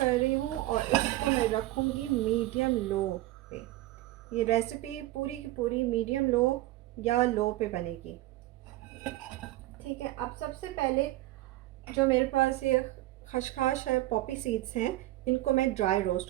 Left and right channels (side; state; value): left; quieter; 17.2 dB